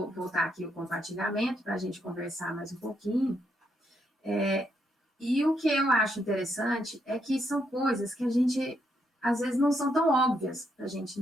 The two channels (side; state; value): both; normal; correlation 0.77